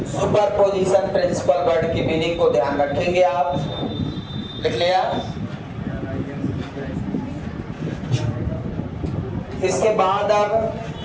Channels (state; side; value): identical; both; correlation 1.00